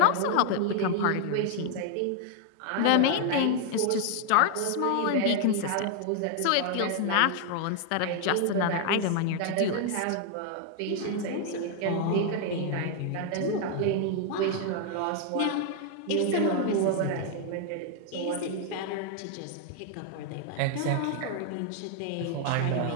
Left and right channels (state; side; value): different; both; correlation 0.00